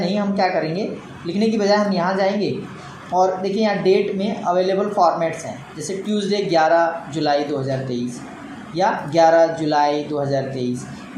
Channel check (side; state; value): both; identical; correlation 1.00